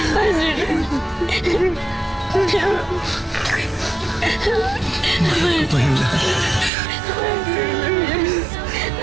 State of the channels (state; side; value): drops out; left; at 6.7 s